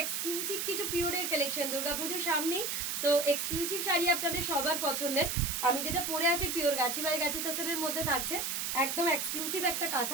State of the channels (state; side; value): noise; right; hiss, 1 dB below the sound